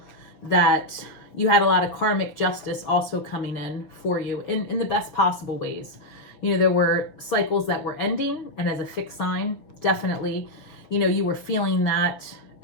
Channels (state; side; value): late; right; 6.4 ms